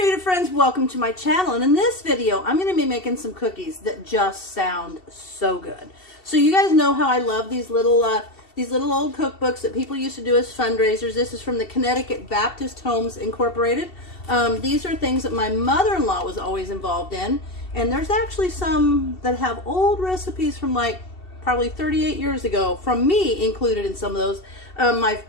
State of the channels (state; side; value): late; right; 2.7 ms